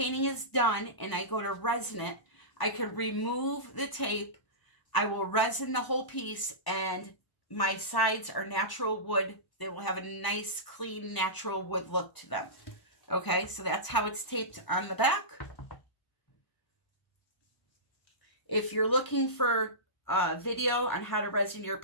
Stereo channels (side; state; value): right; late; 1.0 ms